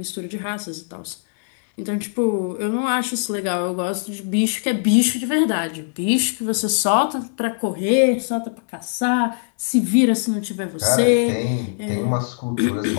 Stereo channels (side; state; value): right; silent; 61 dB below the other